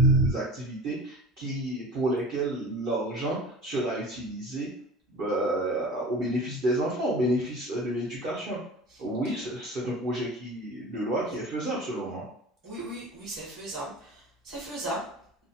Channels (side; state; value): both; normal; correlation 0.38